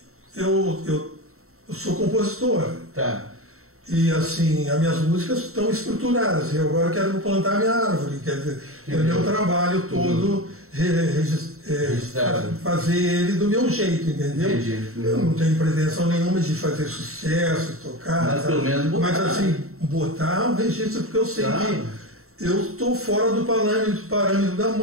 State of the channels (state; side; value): late; left; 0.63 ms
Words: eu sou compositor. Tá. E assim, as minhas músicas estão estruturadas. Eu agora quero plantar minha árvore, quer dizer, o meu trabalho todo fazer ele do meu jeito, entendeu? Eu não tenho pretensão nenhuma de fazer sucesso, tocar. Mas pelo menos botar. Mas assim, botar um registro, porque eu sei que eu estou fora do parâmetro da